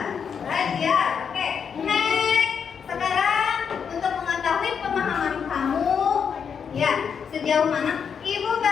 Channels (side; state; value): right; quieter; 6.9 dB